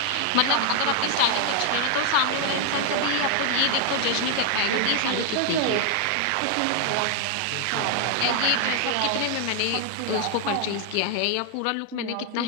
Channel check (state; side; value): different; both; correlation 0.00